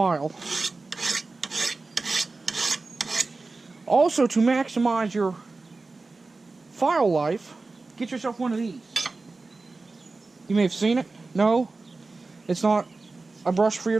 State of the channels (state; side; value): quieter; left; 3.6 dB